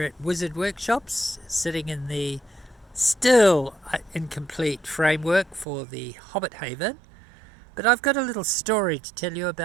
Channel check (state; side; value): drops out; left; at 5.7 s